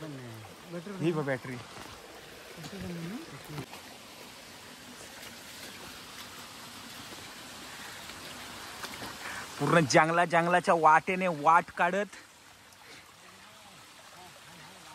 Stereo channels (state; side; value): identical; both; correlation 1.00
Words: ही बघ बॅटरी. पूर्ण जंगलाच्या वाटेने वाट काढत